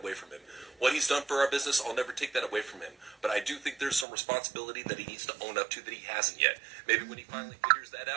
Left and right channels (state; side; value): drops out; left; at 4.0 s